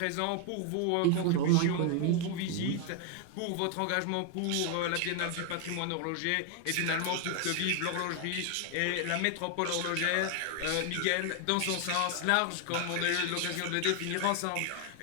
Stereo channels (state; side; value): different; both; correlation 0.00